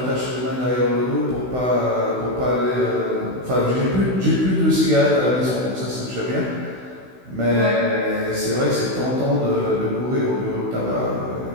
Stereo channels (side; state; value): left; late; 16 ms